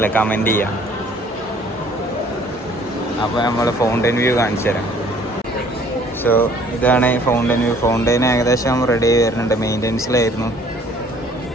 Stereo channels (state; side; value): normal; both; correlation 0.56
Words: കമൻറ്റ് ചെയ്യാം. അപ്പോൾ നമ്മൾ ഫൗണ്ടെയിൻ വ്യൂ കാണിച്ചു തരാം. സോ ഇതാണ് ഫൗണ്ടെയിൻ വ്യൂ. ഫൗണ്ടെയിൻ ഏകദേശം റെഡി ആയി വരുന്നുണ്ട്. മെയിൻ്റെനൻസിലായിരുന്നു,